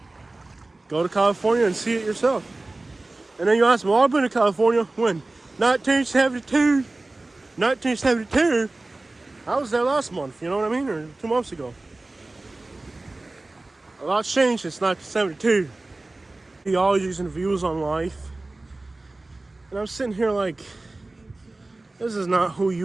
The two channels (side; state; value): left; quieter; 3.0 dB